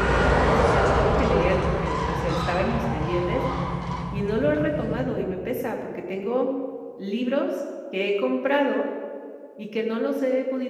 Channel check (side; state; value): both; identical; correlation 1.00